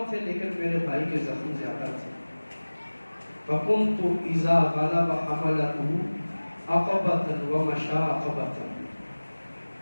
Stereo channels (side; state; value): both; inverted; correlation -1.00